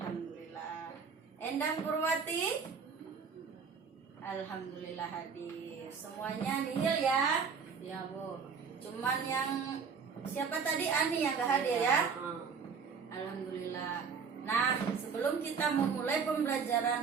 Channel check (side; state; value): left; quieter; 5.9 dB